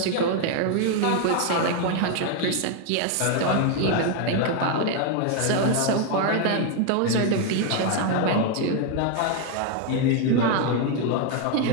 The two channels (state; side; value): different; both; correlation 0.01